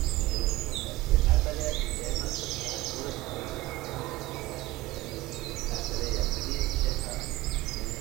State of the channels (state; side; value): quieter; left; 18.1 dB